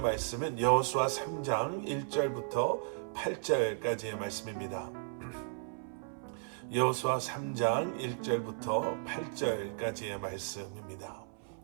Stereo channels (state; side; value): silent; left; 54 dB below the other